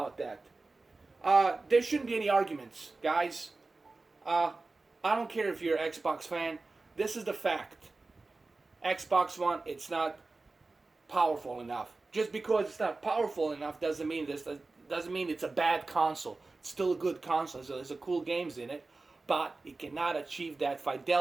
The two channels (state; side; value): quieter; left; 3.5 dB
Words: that. There shouldn't be any arguments, guys. I don't care if you're an Xbox fan. This is the fact. Xbox One, it's not powerful enough. Just because it's not powerful enough doesn't mean it's a bad console. It's still a good console. So there's a cool games in it, but it cannot achieve that